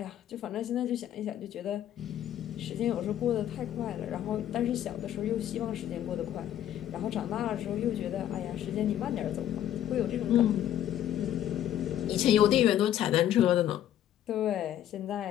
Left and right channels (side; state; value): right; quieter; 11.4 dB